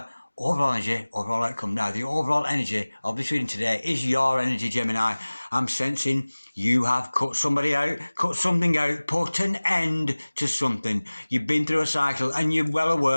overall energy, overall outcome. Now, the overall energy of this reading today is your energy, Gemini. I'm sensing you have cut somebody out, cut something out, put an end to something. You've been through a cycle and you're well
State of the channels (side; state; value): both; inverted; correlation -1.00